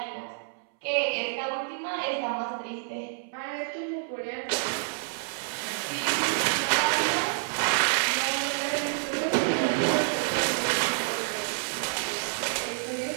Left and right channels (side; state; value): left; silent; 59 dB below the other